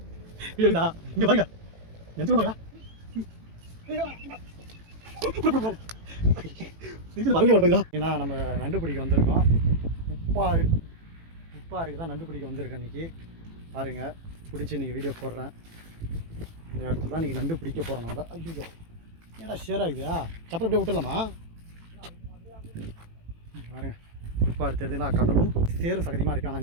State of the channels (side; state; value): left; late; 18 ms